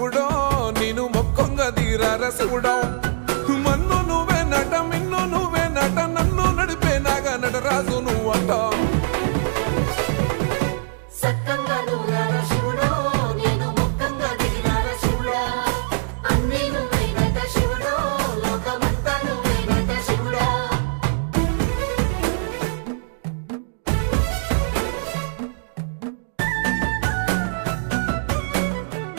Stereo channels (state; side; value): silent; left; digital silence